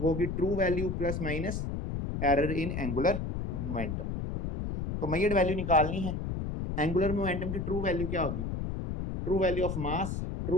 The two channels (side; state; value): left; noise; rumble, 3 dB below the sound